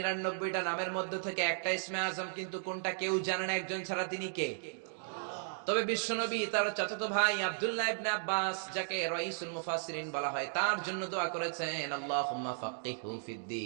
নামের মধ্যে থেকে একটা ইসমে আজম, কিন্তু কোনটা কেউ জানে না একজন ছাড়া, তিনি কে? আল্লাহ। তবে বিশ্বনবী তার চাচাতো ভাই আব্দুল্লাহ ইবনে আব্বাস, যাকে রাইসুল মুফাসসিরিন বলা হয়, তার জন্য দোয়া করেছেন আল্লাহুম্মা ফাক্কিহু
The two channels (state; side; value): silent; left; digital silence